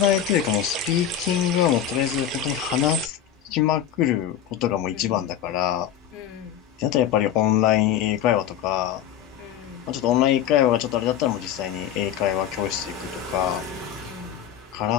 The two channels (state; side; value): quieter; right; 9.9 dB